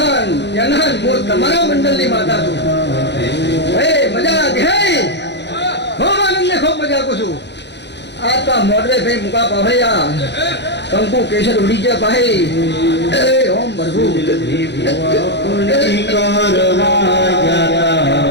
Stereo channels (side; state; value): right; late; 0.50 ms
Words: જનન હું તમારા મંડળની માતા છું ભાઈ મજા દેખાય ખૂબ આનંદ ને ખૂબ મજા પૂછું આ તો મોડરે ભાઈ મુકા પાભૈયા કંકુ કેસર ઉડી ગયા ભાઈ એ ઓમ ભરભુ